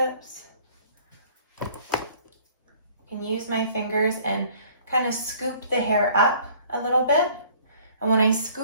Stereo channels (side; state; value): both; inverted; correlation -0.54